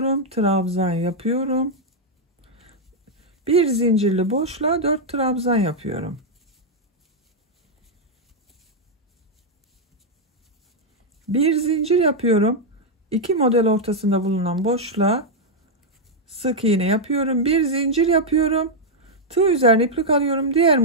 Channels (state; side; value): normal; both; correlation -0.02